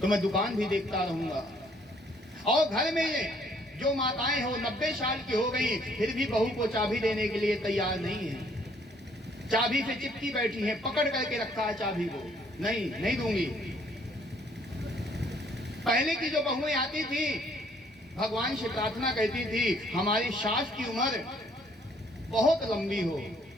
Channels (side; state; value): both; normal; correlation 0.63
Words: तो मैं दुकान भी देखता रहूंगा। और घर में जो माताएं हो 90 साल की हो गई, फिर भी बहू को चाबी देने के लिए तैयार नहीं है, चाबी से चिपकी बैठी है, पकड़ करके रखा है चाबी को, नहीं दूंगी। पहले की जो बहुएं आती थी भगवान से प्रार्थना करती थी हमारी सास की उम्र बहुत लंबी हो।